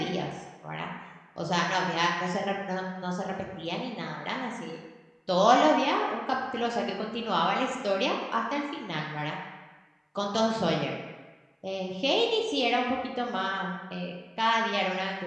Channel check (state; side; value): identical; both; correlation 1.00